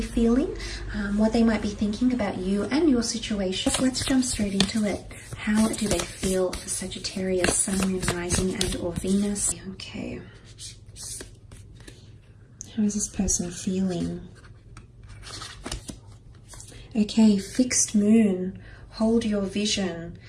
feeling, what they might be thinking about you and your situation. Let's jump straight into it. How do they feel for Sagittarius, Sun, Moon, Rising and or Venus? Okay. How is this person feeling? Okay, fixed moon, hold your vision.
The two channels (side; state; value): both; identical; correlation 1.00